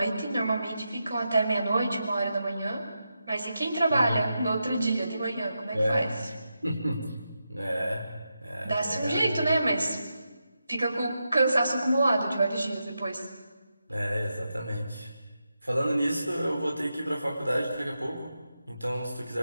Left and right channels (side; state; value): both; inverted; correlation -0.87